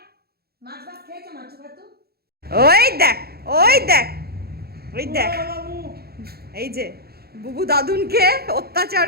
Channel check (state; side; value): late; left; 0.46 ms